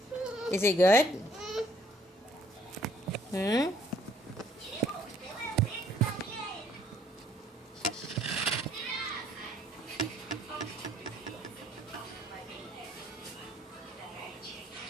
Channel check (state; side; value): normal; both; correlation 0.62